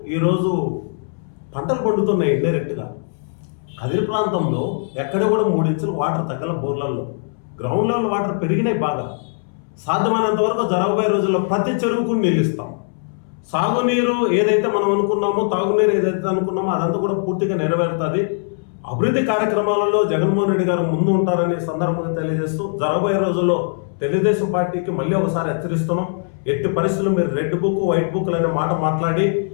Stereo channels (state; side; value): silent; right; 66 dB below the other